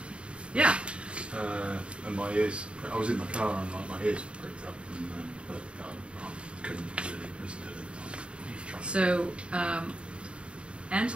Yeah. And my ears, I was in my car and my ears pricked up, but I couldn't really listen to it at the time. So,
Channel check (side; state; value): left; late; 0.057 ms